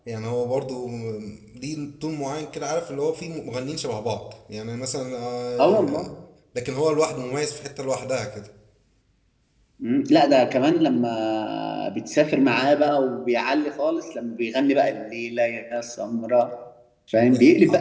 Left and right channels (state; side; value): identical; both; correlation 1.00